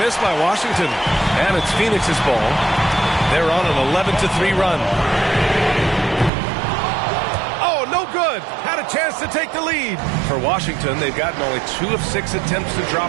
by Washington. And it's Phoenix's ball. They're on an 11-3 run. No good. Had a chance to take the lead. For Washington, they've gotten only 2 of 6 attempts to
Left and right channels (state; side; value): drops out; left; at 6.3 s